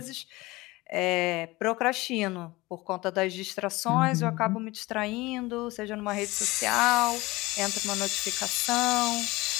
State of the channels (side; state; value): right; quieter; 21.1 dB